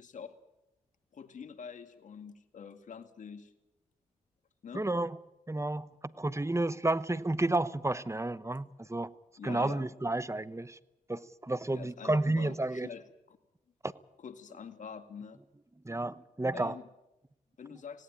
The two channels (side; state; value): both; normal; correlation 0.84